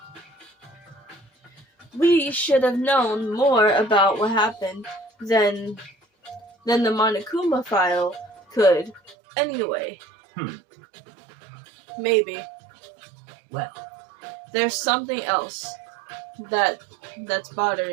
We should have known more about what happened than the Monokuma file could. Anyway. Maybe. Well. There's something else that's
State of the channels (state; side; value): drops out; left; at 9.2 s